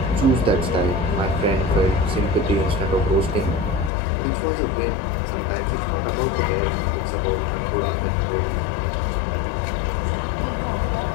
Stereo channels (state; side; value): drops out; right; at 3.9 s